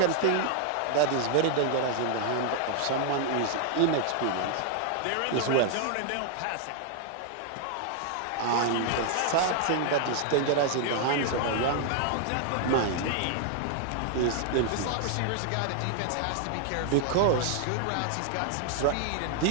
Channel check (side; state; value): both; different; correlation 0.00